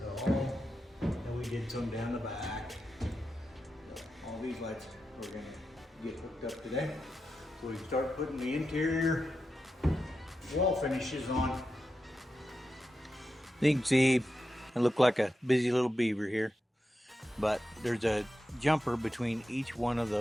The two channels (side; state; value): both; normal; correlation 0.89